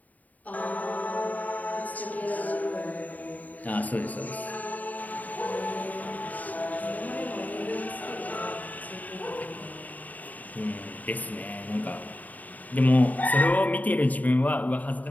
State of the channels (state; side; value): late; right; 0.076 ms